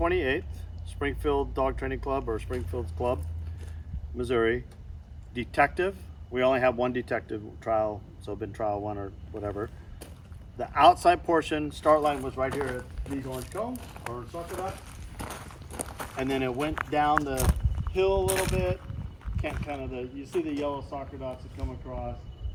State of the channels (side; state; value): both; identical; correlation 1.00